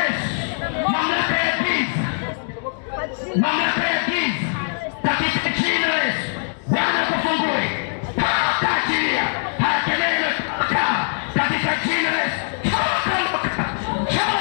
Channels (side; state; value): right; silent; 61 dB below the other